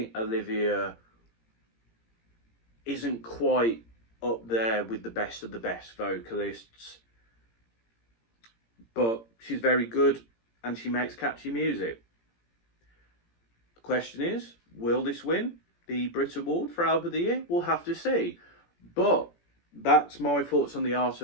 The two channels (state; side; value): late; right; 17 ms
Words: Olivia isn't quite up there with the best of the best vocalists. but she's very good and she makes catchy music. The question is, will this win the Brit Award for Album of the Year? We'll have to see. But that's my thoughts on The Art